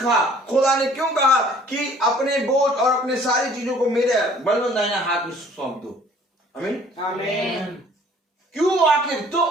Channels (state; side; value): normal; both; correlation 0.54